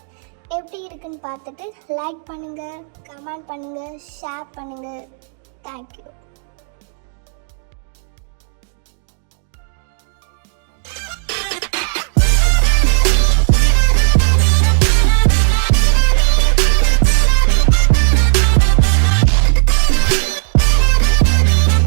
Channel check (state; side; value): silent; left; 58 dB below the other